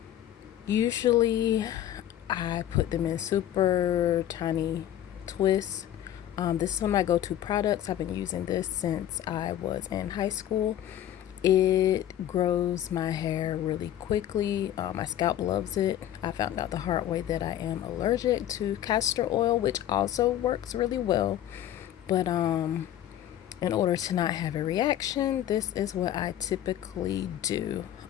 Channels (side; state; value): right; quieter; 11.7 dB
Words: Usually I put them in super tiny twists. This is one of my go-to products. I've been using this since I was in high school. It grows my hair really quickly. My scalp loves it. I found out the hard way that I am allergic to castor oil, which also works really well. But in order to not have a reaction, this is what I typically do.